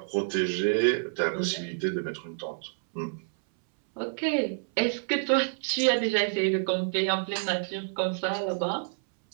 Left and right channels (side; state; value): left; silent; 59 dB below the other